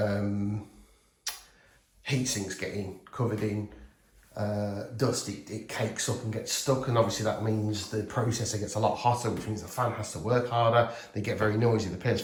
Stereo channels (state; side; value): identical; both; correlation 1.00